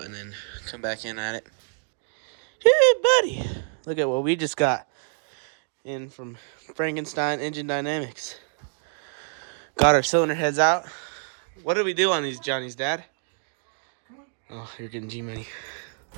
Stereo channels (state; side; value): silent; left; digital silence